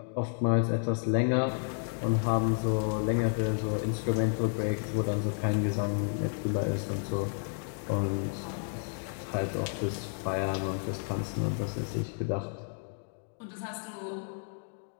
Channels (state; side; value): silent; right; 57 dB below the other